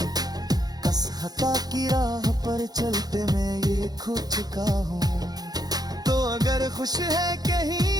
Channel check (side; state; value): left; late; 0.19 ms